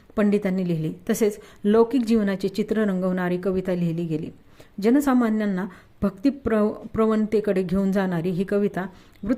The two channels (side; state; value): both; identical; correlation 1.00